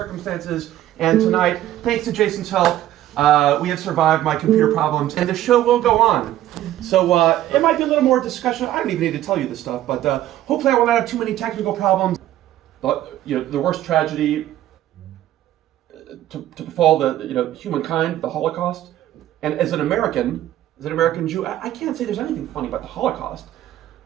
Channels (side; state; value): left; quieter; 13.3 dB